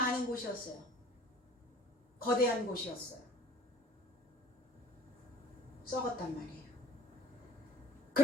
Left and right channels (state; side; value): normal; both; correlation 0.51